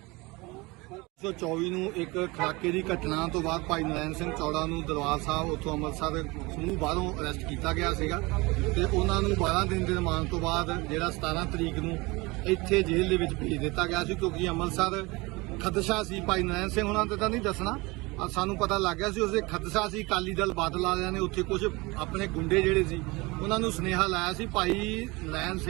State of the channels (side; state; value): left; quieter; 24.1 dB